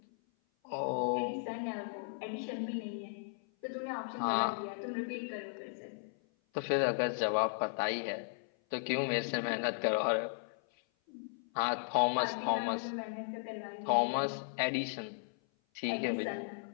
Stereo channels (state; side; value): silent; right; 54 dB below the other